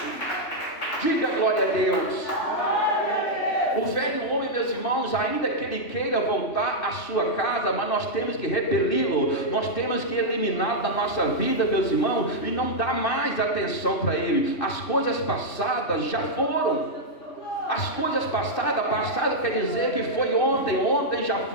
Diga glória a Deus. O velho homem, meus irmãos, ainda que ele queira voltar à sua casa, mas nós temos que repeli-lo, nós temos que eliminá-lo da nossa vida, meus irmãos, e não dar mais atenção para ele. As coisas passadas já foram. As coisas passadas, passado quer dizer que foi ontem, ontem já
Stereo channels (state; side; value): late; right; 2.6 ms